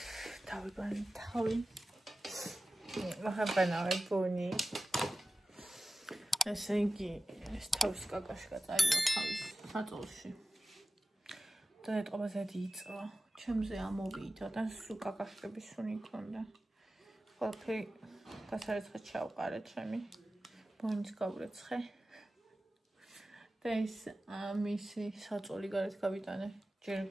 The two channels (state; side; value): normal; both; correlation 0.95